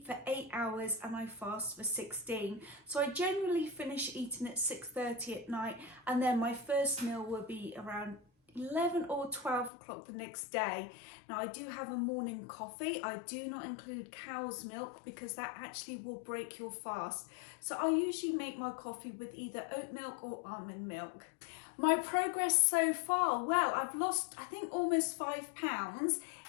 for 8 hours and I fast for 16. So I generally finish eating at 6:30 at night, and then my first meal will be around 11 or 12 o'clock the next day. Now I do have a morning coffee. I do not include cow's milk because that actually will break your fast. So I usually make my coffee with either oat milk or almond milk. My progress so far, well, I've lost I think almost 5 pounds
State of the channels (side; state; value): right; drops out; at 9.7 s